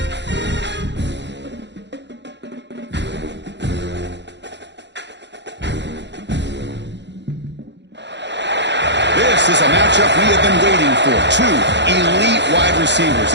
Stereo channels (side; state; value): left; late; 0.51 ms